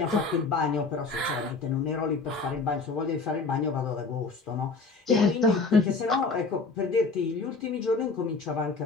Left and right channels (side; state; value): right; quieter; 4.1 dB